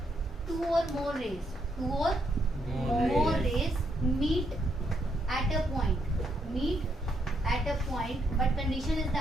टू और more rays meet at a point, but condition is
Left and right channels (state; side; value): normal; both; correlation 0.76